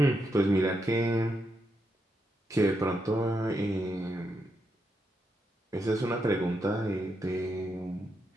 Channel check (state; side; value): normal; both; correlation 0.82